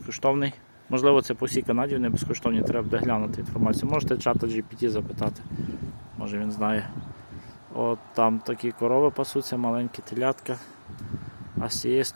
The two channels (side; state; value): both; inverted; correlation -1.00